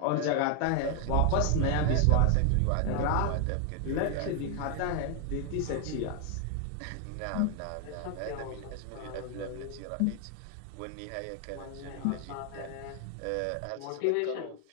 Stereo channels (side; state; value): both; different; correlation 0.01